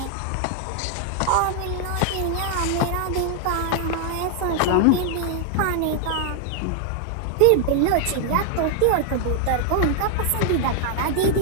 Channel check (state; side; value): different; both; correlation 0.00